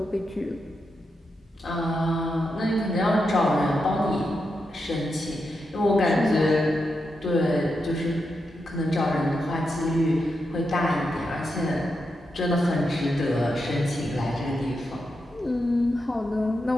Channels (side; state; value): both; normal; correlation 0.86